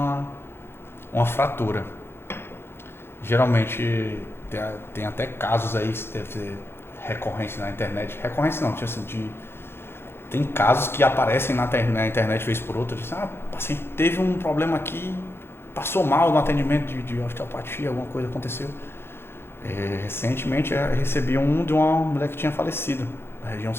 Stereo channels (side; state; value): right; late; 0.11 ms